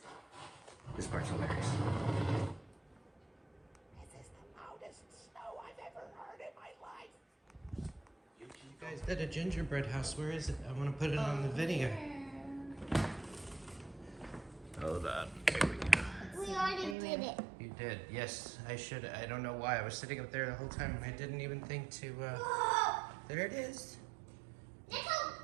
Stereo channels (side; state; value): left; drops out; at 16.9 s